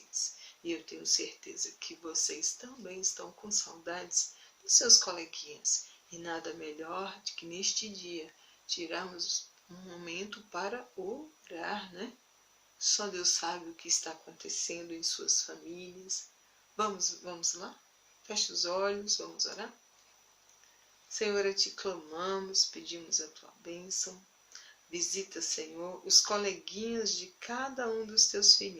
E eu tenho certeza que vocês também estão com saudades dos seus coleguinhas. E nada melhor do que neste dia tirarmos um momento para orar, né? Só Deus sabe o que está acontecendo em suas famílias. Vamos lá? Feche os olhos, vamos orar? Senhor, a Ti clamamos, pedimos a Tua bênção. Visita, Senhor, os coleguinhas de cada um dos Teus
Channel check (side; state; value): both; identical; correlation 1.00